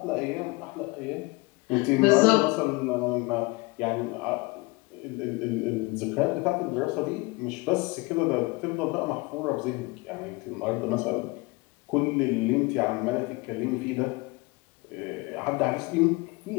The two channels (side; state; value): right; quieter; 24.9 dB